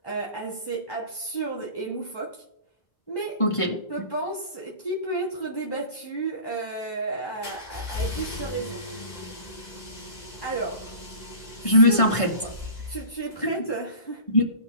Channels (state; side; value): late; right; 1.5 ms